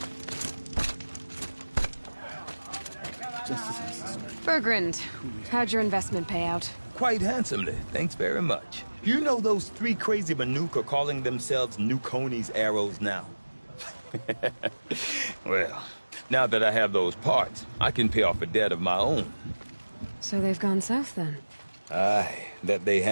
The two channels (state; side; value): inverted; both; correlation -1.00